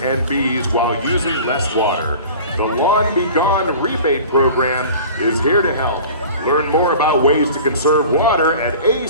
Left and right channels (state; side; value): inverted; both; correlation -0.41